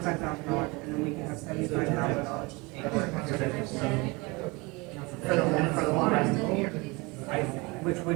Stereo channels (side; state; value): left; quieter; 25.9 dB